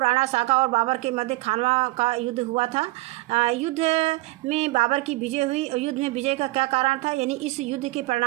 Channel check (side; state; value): left; quieter; 20.8 dB